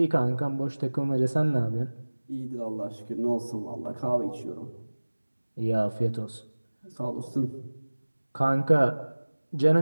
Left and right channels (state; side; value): inverted; both; correlation -1.00